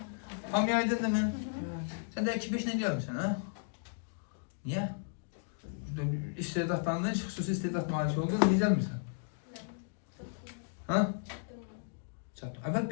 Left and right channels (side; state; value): right; silent; digital silence